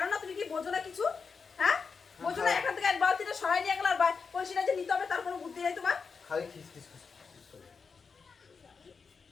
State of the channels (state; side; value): quieter; right; 5.3 dB